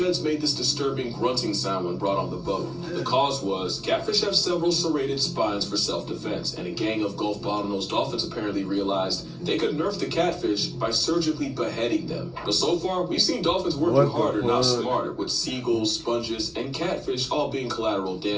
made this disturbing grunting sound when brought on the boat. The cause was, catfish have several serrated spines for self-defense, and a gang of Gulf bottlenose dolphins apparently realized they could nerf the catfish by surgically beheading them. But so far, we've seen dolphins working harder, not smarter, with seagulls, sponges, and catfish all being collateral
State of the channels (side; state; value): both; identical; correlation 1.00